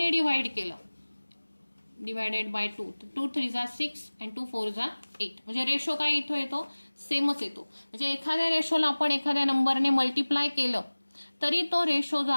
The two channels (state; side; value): inverted; both; correlation -1.00